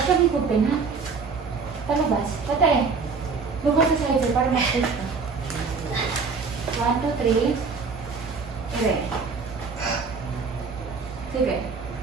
siya higupin, ha? Palabas. Patay. Lubas sa side sir para mag-safe ka. 1, 2, 3. Ire. Sige.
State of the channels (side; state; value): left; quieter; 4.9 dB